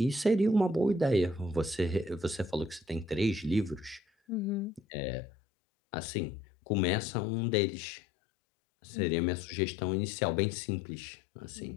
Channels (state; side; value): drops out; right; at 4.8 s